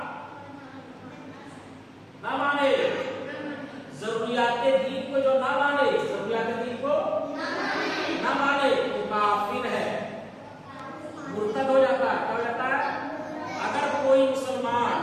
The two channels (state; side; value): identical; both; correlation 1.00